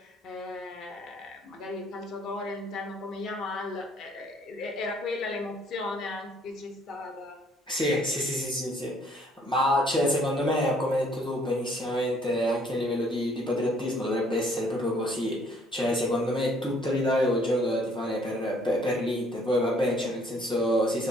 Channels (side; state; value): both; normal; correlation 0.62